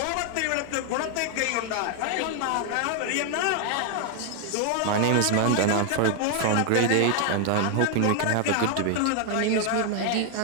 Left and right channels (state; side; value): different; both; correlation 0.00